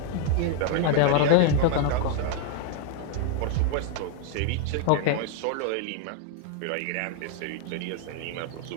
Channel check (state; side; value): different; both; correlation 0.00